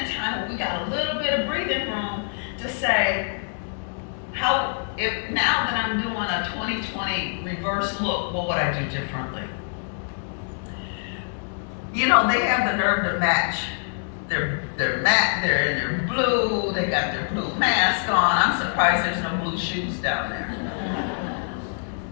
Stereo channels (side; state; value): right; silent; 62 dB below the other